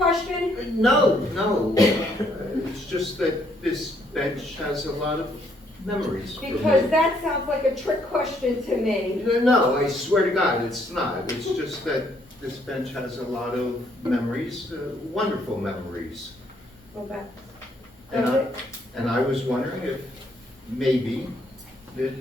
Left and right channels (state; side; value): normal; both; correlation 0.69